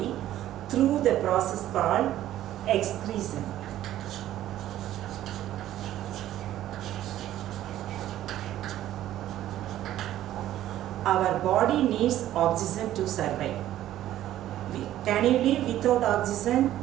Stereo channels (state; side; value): quieter; left; 13.0 dB